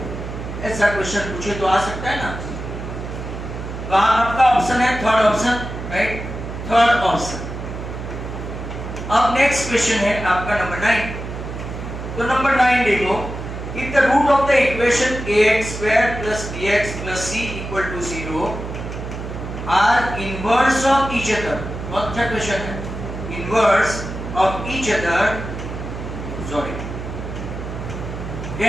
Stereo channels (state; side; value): noise; right; hum, 8 dB below the sound